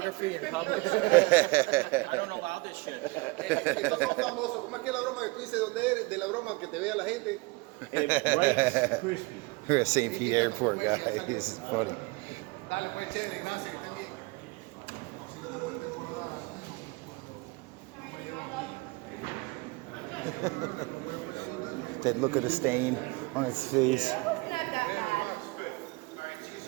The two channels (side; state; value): left; quieter; 25.2 dB